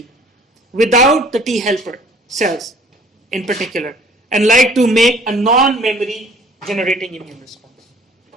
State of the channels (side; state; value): both; normal; correlation 0.53